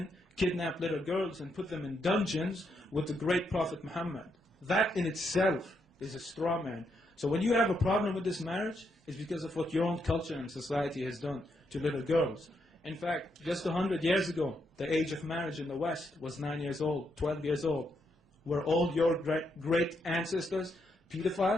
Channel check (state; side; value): normal; both; correlation 0.79